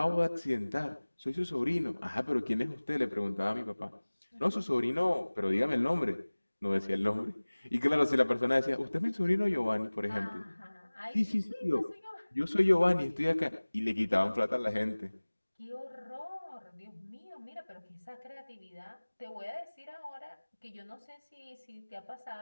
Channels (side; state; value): both; inverted; correlation -1.00